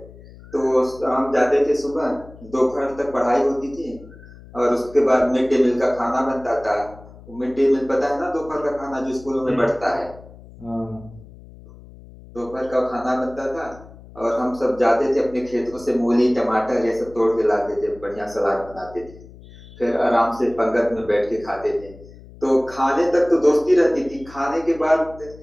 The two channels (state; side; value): noise; left; hum, 20 dB below the sound